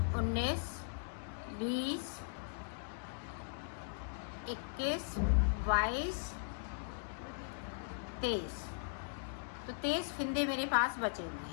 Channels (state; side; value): silent; right; digital silence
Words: 19 20 21 22 23। तो 23 फिंदे मेरे पास बचे हुए